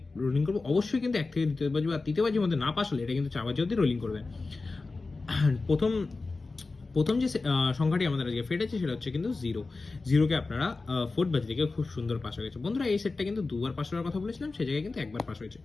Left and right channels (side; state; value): right; quieter; 3.7 dB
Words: রোলিং করবো? অবশ্যই কিন্তু 1 থেকে দ্বিতীয় বাজি বা তৃতীয় বাজির মধ্যে না পাস হলে এটা কিন্তু 4 বাজি অবধি রোলিং করবে। প্রথম প্রথম যে সংখ্যাটি আমাদের আজকে ফেটেছে সেটা হচ্ছে কিন্তু জিরোকে আপনারা ফোর্থ বাজি থেকে খুব সুন্দর পাস হয়ে গেছে। বন্ধুরা, এই সেটটা কিন্তু দুবার পাস হওয়ার কথা বলেছিলাম, সেই জায়গায় কিন্তু একবার পাস হয়েছে।